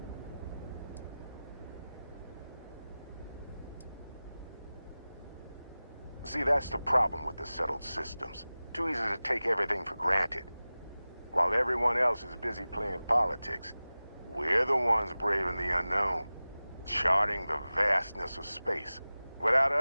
See, that's the problem with the settled systems. Too easy to take everything for granted. While everyone else is busy playing politics, we're the ones braving the unknown, charting the vastness of space. Without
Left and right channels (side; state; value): both; inverted; correlation -0.97